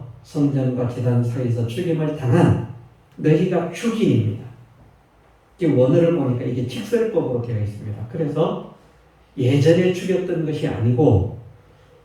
성전과 제단 사이에서 죽임을 당한 너희가 죽인입니다. 원어를 보니까 이게 직설법으로 되어 있습니다. 그래서 예전에 죽였던 것이 아니고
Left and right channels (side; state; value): both; identical; correlation 1.00